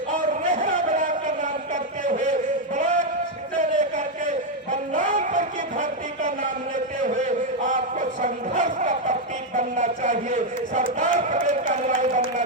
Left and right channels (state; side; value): normal; both; correlation 0.02